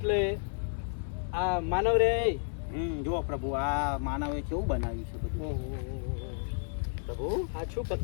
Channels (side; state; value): right; silent; 57 dB below the other